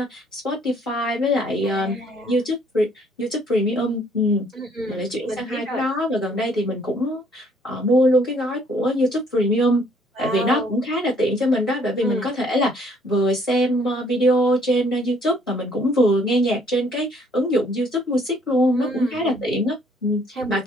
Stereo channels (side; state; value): both; normal; correlation 0.62